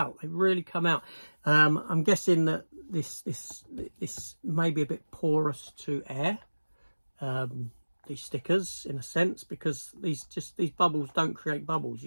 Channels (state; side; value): inverted; both; correlation -1.00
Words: They really come out. I'm guessing that this may be a bit porous to air, these stickers, in a sense, because these bubbles don't create bubbles.